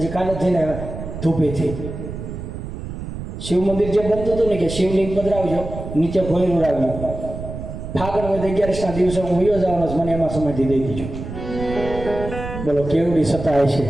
કાલે જઈને ધૂપેથી શિવ મંદિર જે બનતું હતું ને કે શિવલિંગ પધરાવજો નીચે ભોયરું રાખ્યું ફાગણ હોય તો 11ના દિવસે હું વયો જવાનો છું મને એમાં સમયથી દઈ દીધું બોલો કેવડી સતાય છે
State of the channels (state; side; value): noise; right; rumble, 8 dB below the sound